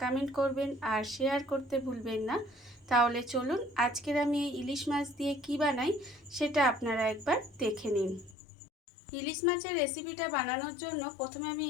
কমেন্ট করবেন আর শেয়ার করতে ভুলবেন না। তাহলে চলুন আজকের আমি এই ইলিশ মাছ দিয়ে কি বানাই সেটা আপনারা একবার দেখে নিন। ইলিশ মাছের রেসিপিটা বানানোর জন্য প্রথমে আমি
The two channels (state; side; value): drops out; right; at 8.3 s